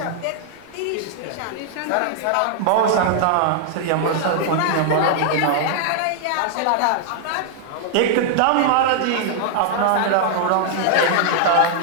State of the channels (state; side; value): different; both; correlation -0.01